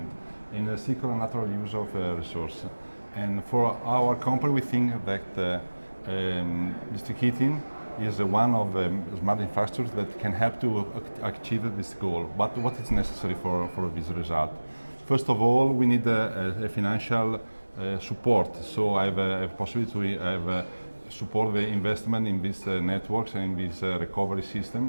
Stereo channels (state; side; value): inverted; both; correlation -1.00